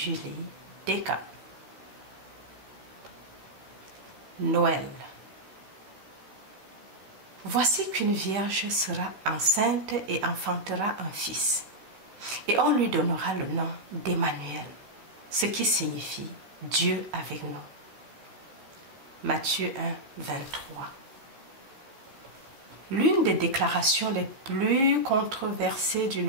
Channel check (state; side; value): late; left; 15 ms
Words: Descamps. Noël. Voici qu'une vierge sera enceinte et enfantera un fils, et on lui donnera le nom d'Emmanuel, ce qui signifie Dieu avec nous. Matthieu 1, 23. L'une des déclarations les plus controversées du